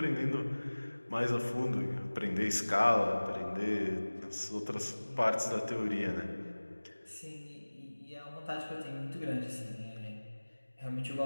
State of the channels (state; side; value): inverted; both; correlation -1.00